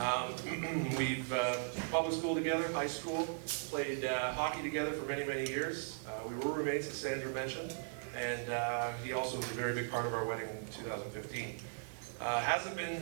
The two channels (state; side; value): silent; left; digital silence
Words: We've public school together, high school, played hockey together for many, many years. We were roommates, as Sandra mentioned, and he also was a very big part of our wedding in 2015. Hasn't